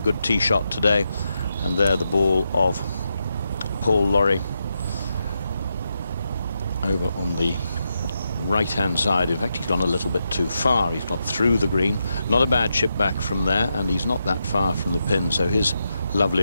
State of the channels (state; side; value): inverted; both; correlation -0.84